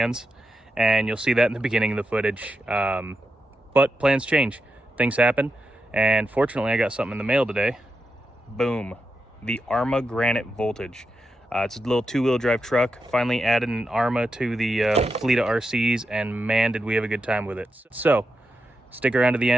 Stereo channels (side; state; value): both; normal; correlation 0.87